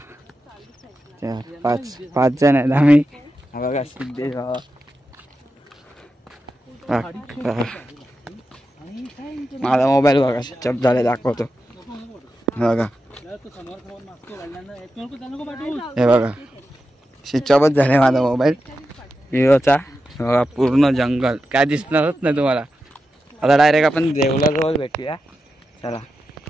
4 5 जण आहेत आम्ही. हा बघा सिद्धेश माझा मोबाईल बघा स्विच ऑफ झाले दाखवतो. बघा हे बघा स्विच ऑफच झाले माझा मोबाईल विवोचा. बघा पूर्ण जंगल काय दिसणारच नाही तुम्हाला. आता डायरेक्ट आपण देवलाजवळ भेटूया. चला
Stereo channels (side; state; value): both; normal; correlation 0.90